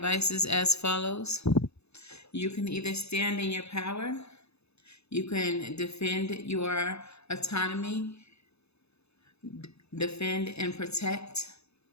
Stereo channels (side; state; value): right; late; 0.79 ms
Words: is as follows. You can either stand in your power, you can defend your autonomy, defend and protect